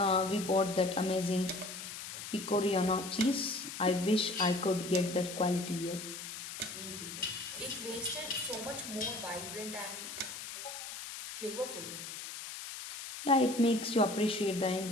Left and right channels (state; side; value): noise; left; hiss, 9 dB below the sound